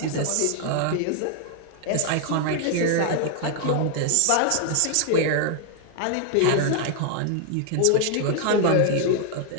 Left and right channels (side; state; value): both; different; correlation 0.00